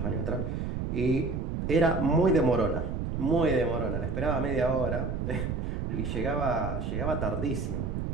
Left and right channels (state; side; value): noise; right; rumble, 2 dB below the sound